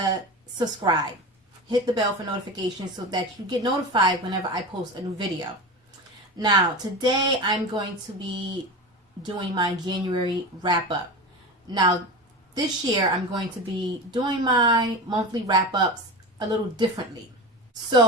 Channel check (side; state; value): both; normal; correlation 0.27